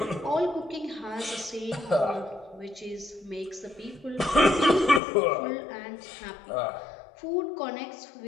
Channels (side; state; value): right; drops out; at 5.0 s